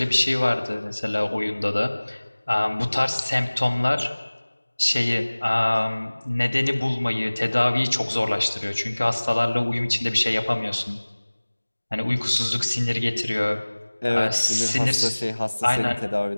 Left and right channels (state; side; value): inverted; both; correlation -1.00